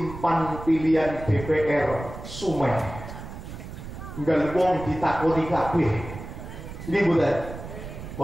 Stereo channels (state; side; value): noise; right; rumble, 11 dB below the sound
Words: pan pilihan DPR sumeh. Enggak wong ditakoni kabeh. Ini boten.